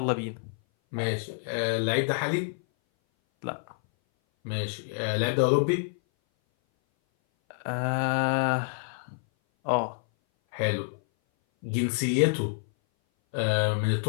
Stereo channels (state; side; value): silent; right; 58 dB below the other